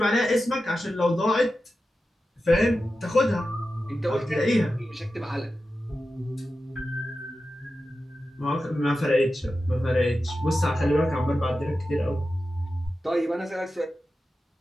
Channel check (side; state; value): both; normal; correlation 0.92